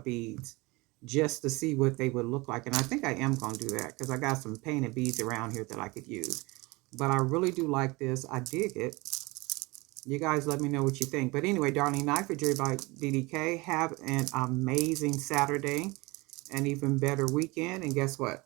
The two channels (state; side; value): quieter; left; 24.1 dB